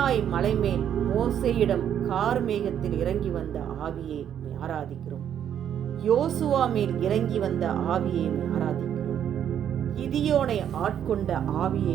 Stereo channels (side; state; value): left; quieter; 9.5 dB